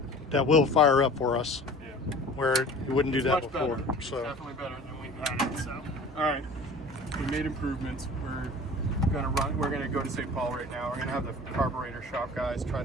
that will fire up for us, Yeah. where you wouldn't do It's that much before. better. So It's definitely better than we've had it. So, all right, we made improvements. We're gonna go to St. Paul right now. We're gonna have the carburetor shop guys try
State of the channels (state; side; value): normal; both; correlation 0.42